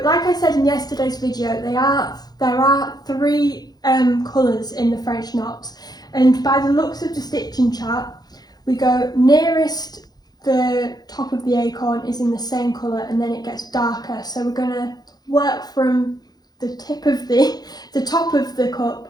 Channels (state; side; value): late; right; 0.19 ms